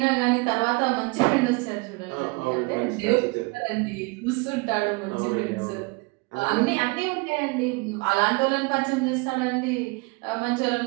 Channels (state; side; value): quieter; left; 27.9 dB